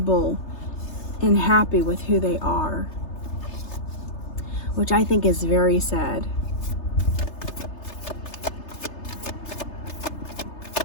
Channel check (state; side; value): late; right; 3.3 ms